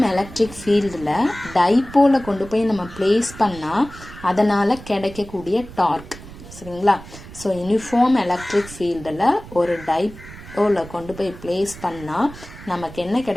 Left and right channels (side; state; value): right; noise; rumble, 16 dB below the sound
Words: electric ஃபீல்டில் டைப்போலை கொண்டு போய் நம்ம place பண்ணால் அதனால் கிடைக்கக்கூடிய டார்க், சரிங்களா? ஸோ யூனிஃபார்ம் எலக்ட்ரிக் ஃபீல்டில் ஒரு டைப்போலை கொண்டு போய் பிளேஸ் பண்ணால் நமக்கு என்ன